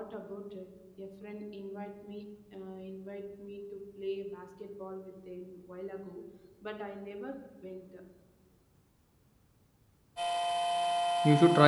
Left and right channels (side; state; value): both; identical; correlation 1.00